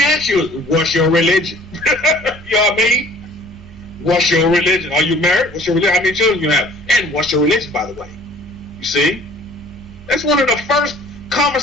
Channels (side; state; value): both; normal; correlation 0.51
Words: ask you is, what's your religion? You know what I mean? What's your religion? Are you married? What's your religion? How many children you have? And what's your religion, by the way? You see? That's one of the first